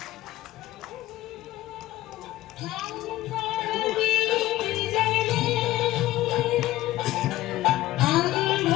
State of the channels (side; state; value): right; quieter; 15.9 dB